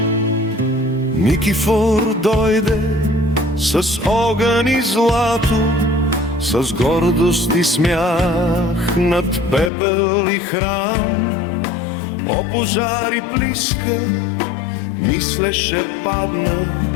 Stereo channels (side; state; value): right; drops out; at 9.7 s